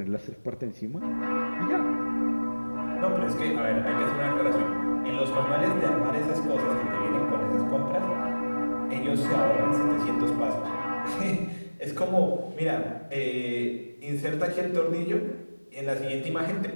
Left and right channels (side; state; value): both; inverted; correlation -1.00